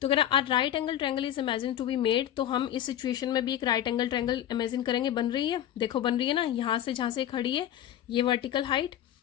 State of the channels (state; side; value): quieter; right; 11.3 dB